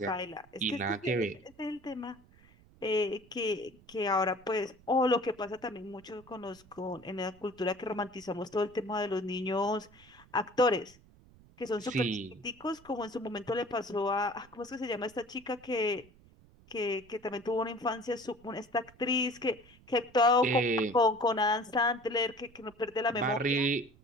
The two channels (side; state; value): right; noise; rumble, 26 dB below the sound